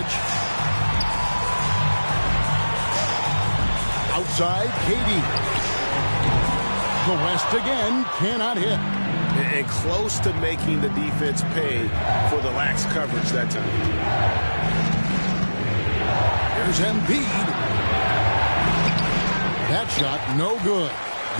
Outside, KD. The West again cannot hit. And close to making the defense pay for the lax coverage that time. Here's Embiid. That shot no good.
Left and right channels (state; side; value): inverted; both; correlation -1.00